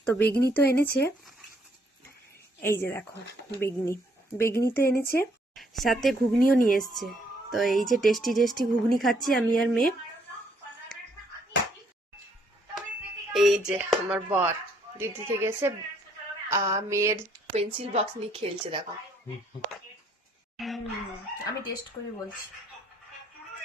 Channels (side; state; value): both; normal; correlation 0.68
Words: তো বেগনি তো এনেছে। এই যে দেখো বেগনি তো এনেছে, সাথে ঘুগনিও নিয়ে এসছে। তো এই যে টেস্টি টেস্টি ঘুগনি খাচ্ছি আমি আর মেয়ে। এই যে আমার বর দিদি থেকে এসে মেয়ের পেন্সিল বক্স নিয়ে খেলছে, দেখো। আমি টেস্ট করে বলছি।